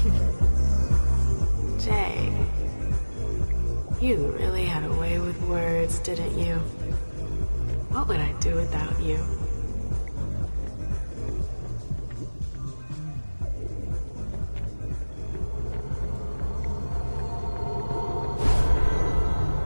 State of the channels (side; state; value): both; inverted; correlation -1.00